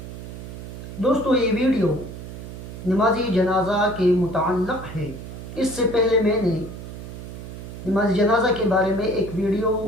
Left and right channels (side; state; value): right; noise; hum, 11 dB below the sound